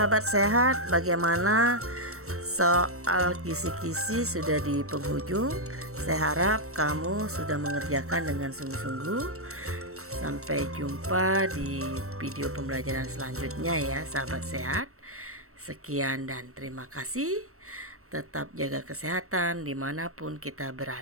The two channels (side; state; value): left; late; 0.63 ms